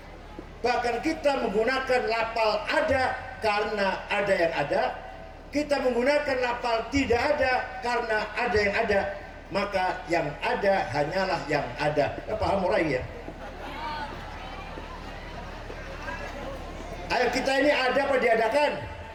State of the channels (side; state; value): both; identical; correlation 1.00